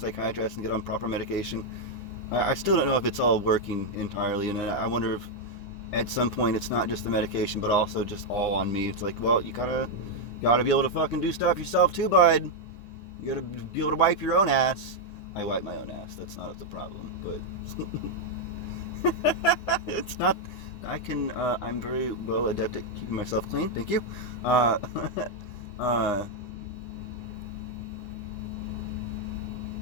and get on proper medication. I still don't know if it's all working entirely, and I wonder if at some point it's not just the medication, but also just all on me. It's like, well, you gotta be able to fucking do stuff yourself too, bud. You gotta be able to wipe your own ass. I wipe my own ass. That's not the problem, but it's not. I'm very well adept at keeping myself clean. Thank you. I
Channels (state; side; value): late; right; 9.9 ms